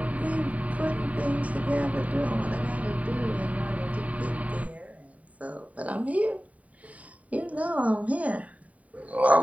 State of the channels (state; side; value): late; left; 0.069 ms